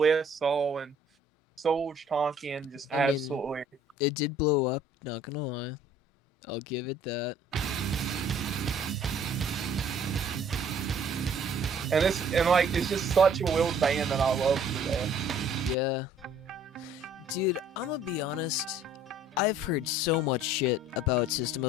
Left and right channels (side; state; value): both; normal; correlation 0.56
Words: saw and Soldier Tonkin just I mean- absolutely. It did blow up, not gonna lie. I'll give it that. And it's just such a well band that I love today. Yeah. Dude, I'm gonna be honest. I've heard so much shit about System